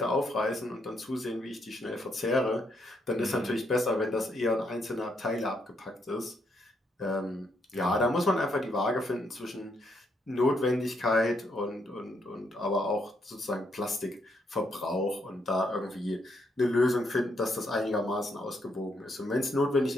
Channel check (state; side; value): normal; both; correlation 0.75